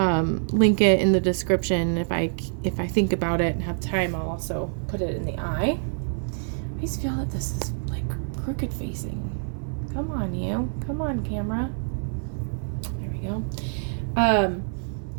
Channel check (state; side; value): silent; left; 56 dB below the other